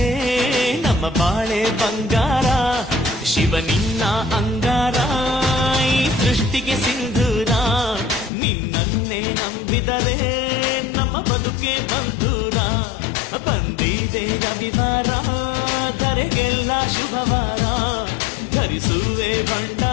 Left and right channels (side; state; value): right; drops out; at 8.3 s